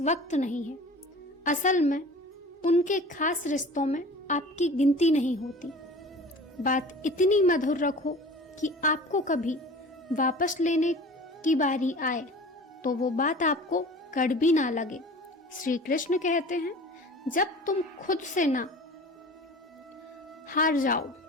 नहीं है, असल में उनके खास रिश्तों में आपकी गिनती नहीं होती। बात इतनी मधुर रखो कि आपको कभी वापस लेने की बारी आए तो वो बात आपको कड़वी ना लगे। श्री कृष्ण कहते हैं, जब तुम खुद से ना हार जाओ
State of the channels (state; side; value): normal; both; correlation 0.41